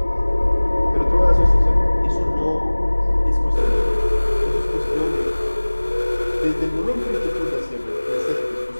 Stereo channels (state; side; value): inverted; both; correlation -1.00